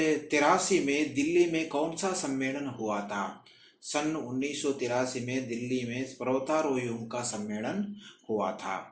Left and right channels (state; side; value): identical; both; correlation 1.00